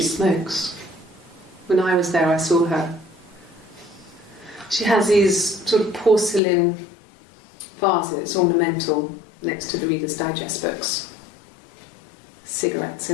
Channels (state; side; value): drops out; right; at 6.4 s